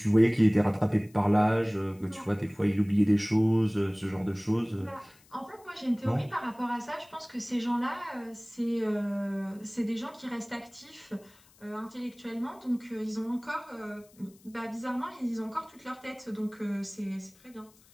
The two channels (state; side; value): noise; left; hiss, 28 dB below the sound